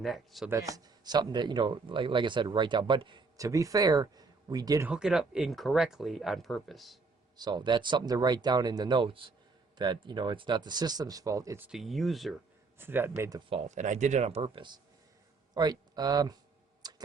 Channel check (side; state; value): left; quieter; 4.2 dB